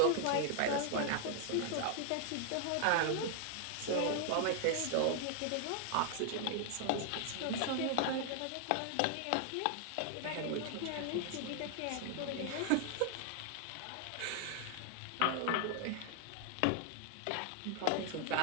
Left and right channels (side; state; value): both; different; correlation 0.00